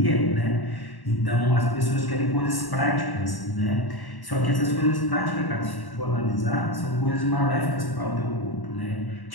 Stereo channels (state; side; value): late; right; 1.1 ms